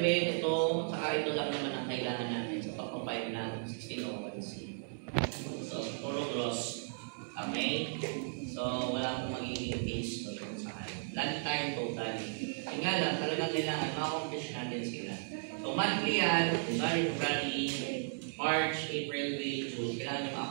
ito, saka ito lang naman ang kailangan natin sa pag-compile ng 1601C. So, puro gross. Okay? So, wala akong magiging case doon kung saan. Lahat tayo total. Yung nga lang, talagang kailangan ma-accomplish natin sila. So, monthly yan, February, March, April, May, June, kailangan nyo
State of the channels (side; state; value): left; silent; 54 dB below the other